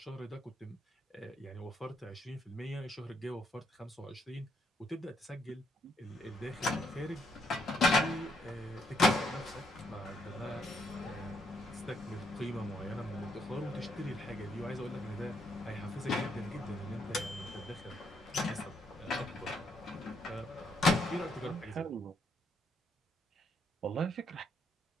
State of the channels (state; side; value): normal; both; correlation 0.74